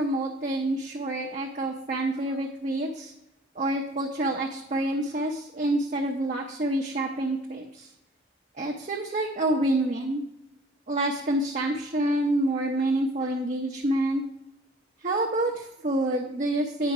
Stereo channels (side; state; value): both; normal; correlation 0.50